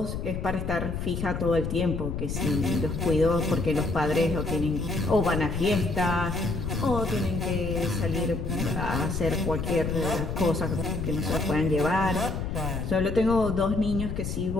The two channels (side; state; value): left; noise; rumble, 4 dB below the sound